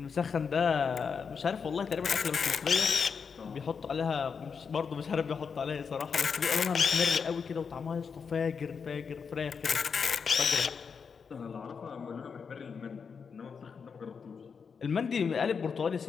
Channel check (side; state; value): right; quieter; 5.9 dB